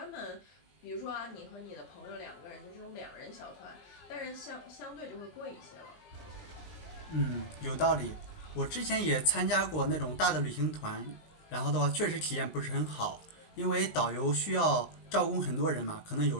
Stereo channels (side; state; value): right; late; 19 ms